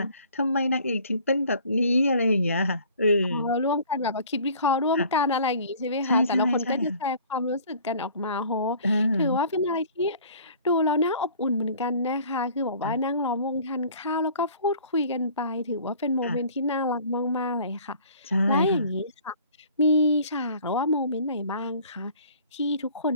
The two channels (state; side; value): inverted; both; correlation -0.50